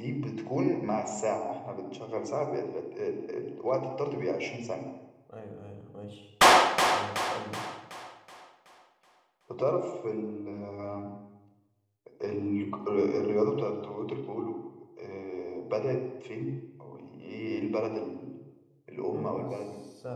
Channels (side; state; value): both; identical; correlation 1.00